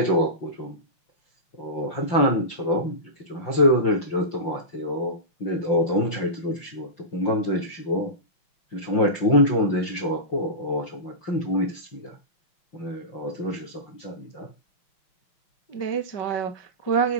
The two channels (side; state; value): right; late; 5.8 ms